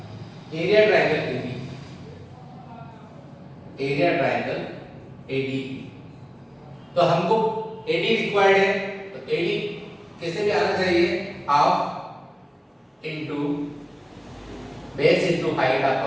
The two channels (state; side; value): identical; both; correlation 1.00